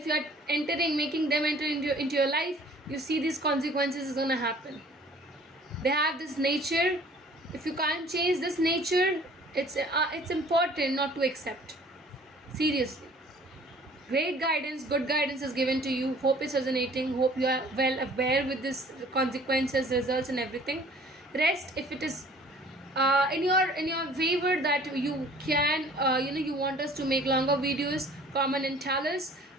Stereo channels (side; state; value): both; normal; correlation 0.52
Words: you are making them enter into your life, you see these consequences is going to happen. They have this nature. If you can't change this nature, it's important not to accept. Seriously. Great guidance, good guidance is given to you. Hope it's resonating. Hope you are well aware with this consequences, results, and everything. Rest if it is in your favor that you can you want us to make longer videos, comment and tell us,